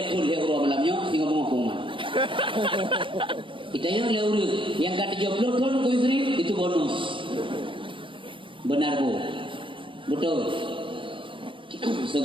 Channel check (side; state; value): left; late; 0.25 ms